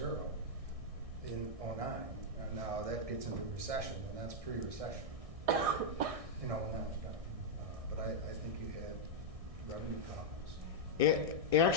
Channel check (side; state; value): left; late; 1.6 ms